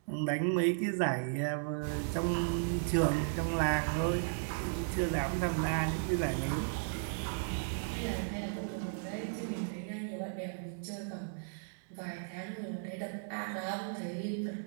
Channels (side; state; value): left; silent; digital silence